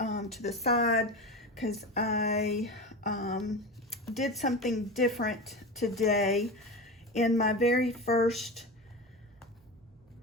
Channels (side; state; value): both; normal; correlation 0.25